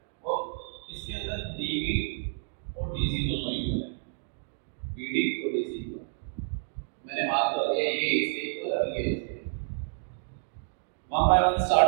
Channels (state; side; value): silent; left; digital silence